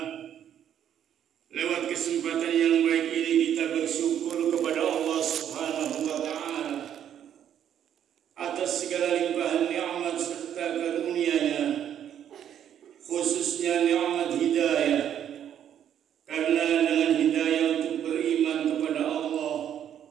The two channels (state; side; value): quieter; left; 9.8 dB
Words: lewat kesempatan yang baik ini kita bersyukur kepada Allah Subhanahu wa Ta'ala atas segala limpahan nikmat serta karunia-Nya, khususnya nikmat hidayah. Karena dengan hidayah untuk beriman kepada Allah